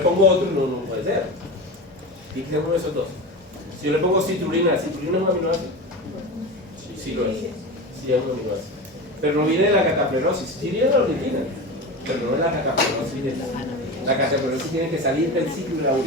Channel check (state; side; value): normal; both; correlation 0.26